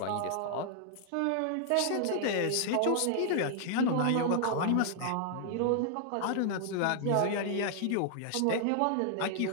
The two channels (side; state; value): both; different; correlation -0.01